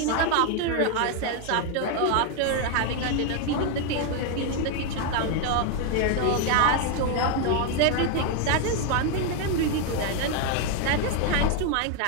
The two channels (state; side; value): different; both; correlation 0.00